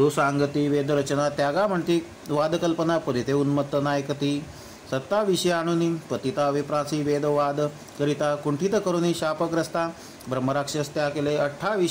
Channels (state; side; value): identical; both; correlation 1.00